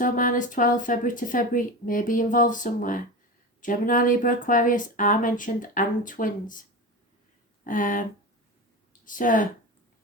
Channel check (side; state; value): both; normal; correlation 0.26